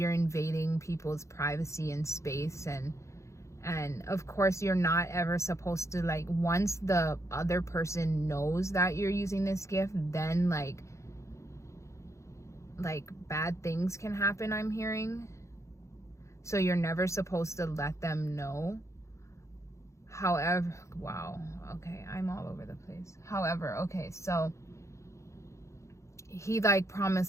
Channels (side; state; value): right; late; 0.14 ms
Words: invading people's privacy and space. And of course, you're not ever supposed to, like, once the other person knows that you're using this gift, then like bad things can happen, I'm hearing. So you're never supposed to let them know. However, wow, okay, I'm all over the place. However, okay, so he like promised,